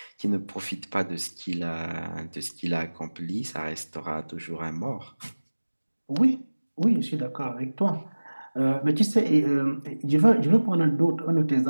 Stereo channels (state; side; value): inverted; both; correlation -1.00